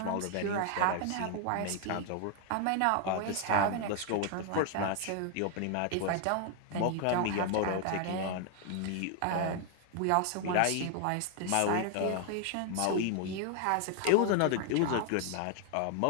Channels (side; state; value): both; different; correlation 0.00